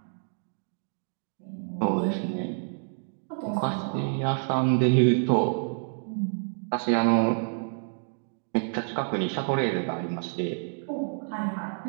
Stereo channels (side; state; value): left; silent; digital silence